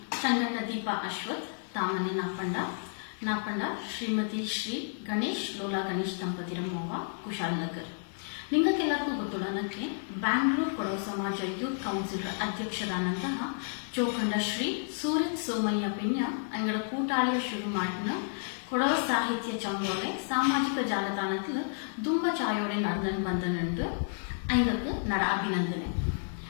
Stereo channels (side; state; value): right; silent; digital silence